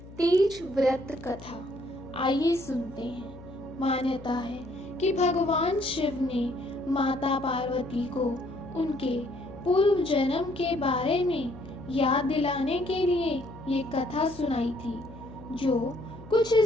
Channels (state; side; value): noise; left; hum, 18 dB below the sound